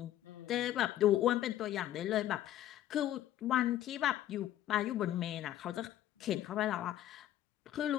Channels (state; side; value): quieter; right; 12.7 dB